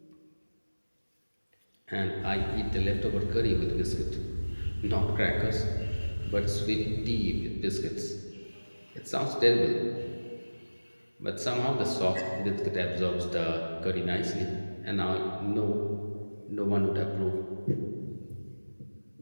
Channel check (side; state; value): both; inverted; correlation -1.00